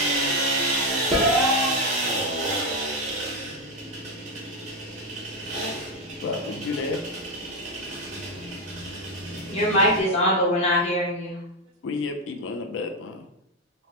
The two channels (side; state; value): both; normal; correlation 0.06